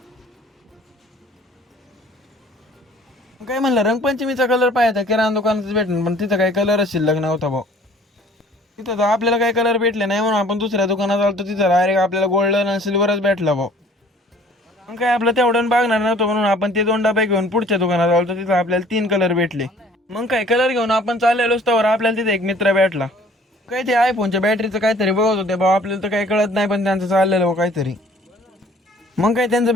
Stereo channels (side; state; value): both; normal; correlation 0.54